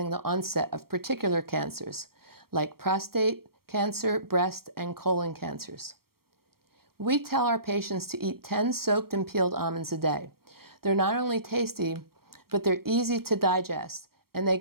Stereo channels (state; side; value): late; left; 0.94 ms